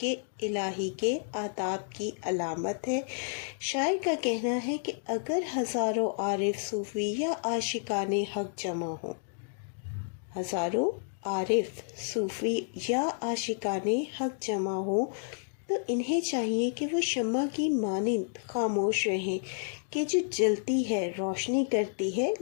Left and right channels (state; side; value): silent; right; digital silence